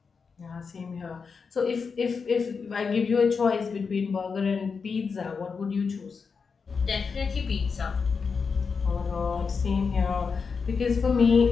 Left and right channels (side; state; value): right; quieter; 5.4 dB